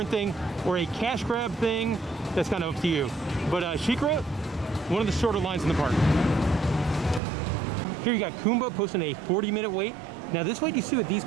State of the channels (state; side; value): drops out; left; at 7.2 s